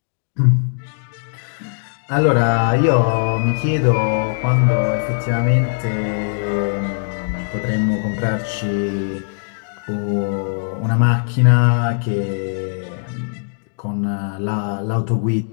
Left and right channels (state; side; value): silent; right; digital silence